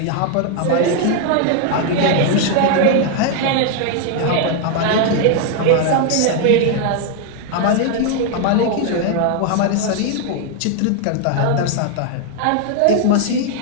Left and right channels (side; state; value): both; different; correlation 0.00